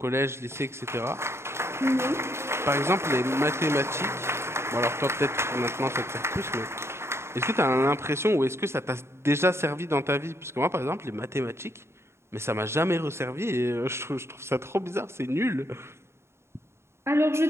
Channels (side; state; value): left; late; 0.13 ms